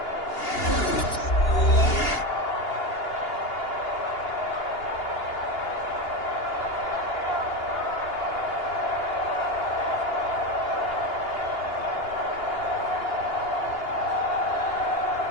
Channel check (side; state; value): right; late; 2.8 ms